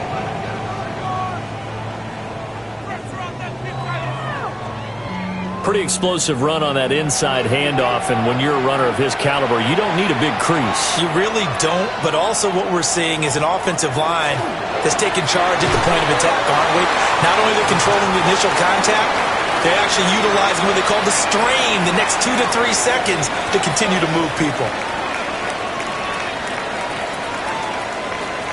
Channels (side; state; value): both; identical; correlation 1.00